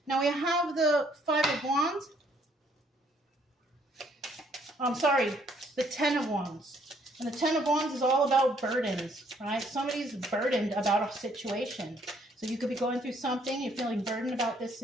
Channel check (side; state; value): both; normal; correlation 0.66